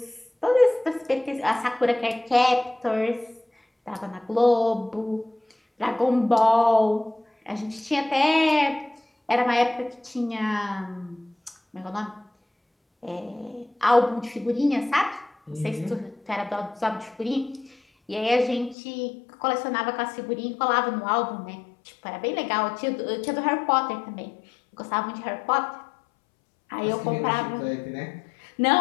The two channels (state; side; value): drops out; right; at 18.8 s